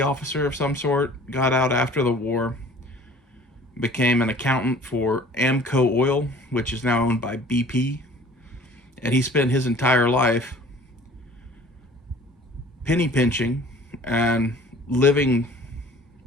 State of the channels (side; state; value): both; normal; correlation 0.49